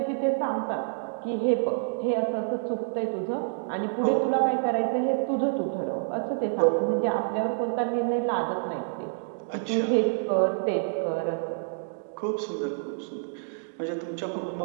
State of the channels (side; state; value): left; silent; digital silence